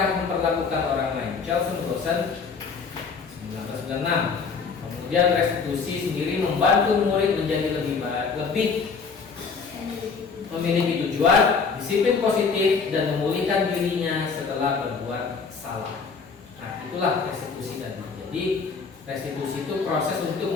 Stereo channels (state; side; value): quieter; right; 5.2 dB